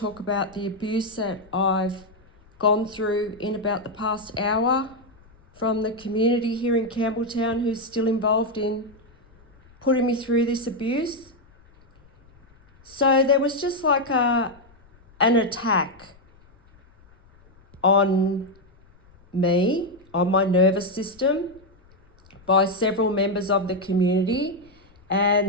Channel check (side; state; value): left; noise; rumble, 28 dB below the sound